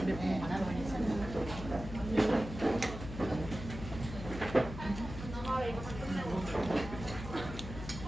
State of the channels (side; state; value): left; noise; hum, 9 dB below the sound